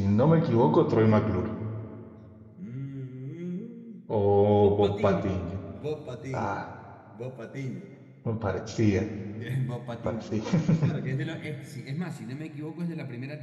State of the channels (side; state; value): both; identical; correlation 1.00